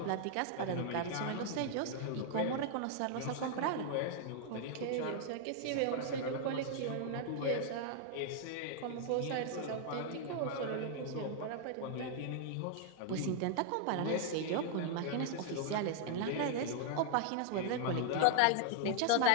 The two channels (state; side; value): different; both; correlation 0.00